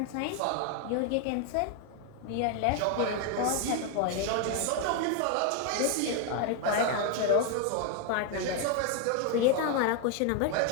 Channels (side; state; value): both; different; correlation 0.01